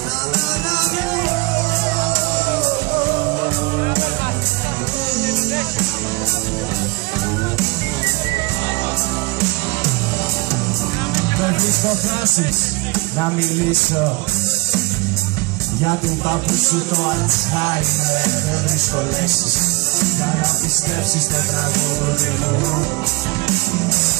Δεν βρίσκω φράσεις να μιλήσω για του παππού σου το Αλτσχάιμερ. Δεν βρίσκω λέξεις για να πιστέψεις το τραγούδι μου.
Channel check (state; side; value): quieter; left; 24.8 dB